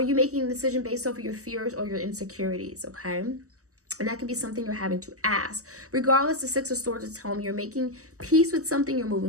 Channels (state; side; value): late; left; 0.66 ms